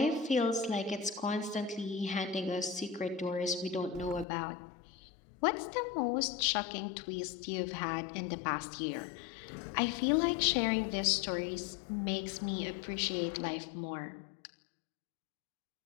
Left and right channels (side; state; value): right; drops out; at 4.2 s